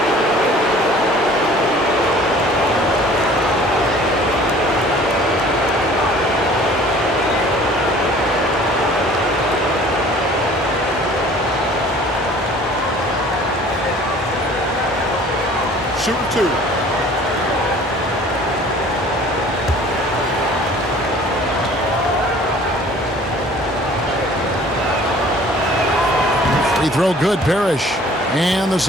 Shooting 2. Free throw good, Parrish. And the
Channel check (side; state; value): both; normal; correlation 0.50